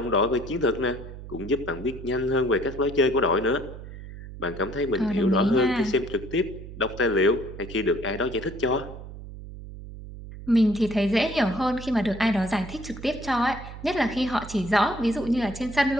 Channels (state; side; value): noise; right; hum, 13 dB below the sound